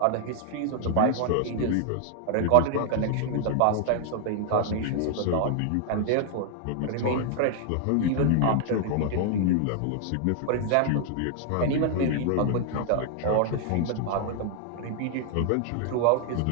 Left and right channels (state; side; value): different; both; correlation 0.00